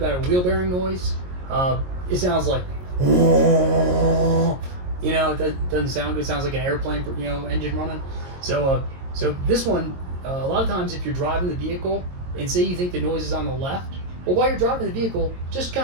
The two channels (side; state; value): left; late; 22 ms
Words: a wheel bearing noise. It sounds like, you know, it doesn't sound good. It sounds like an airplane, engine running. So this one, a lot of times if you're driving the vehicle and say you think the noise is on the left, well, while you're driving the vehicle, just